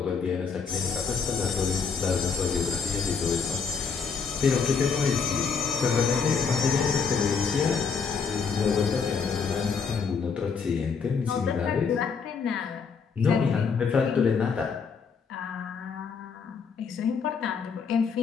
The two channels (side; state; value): right; quieter; 5.8 dB